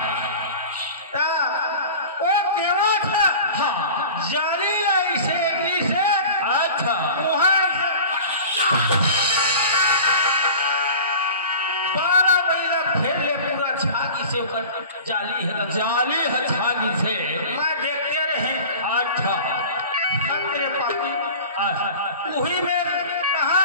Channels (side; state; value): both; inverted; correlation -0.39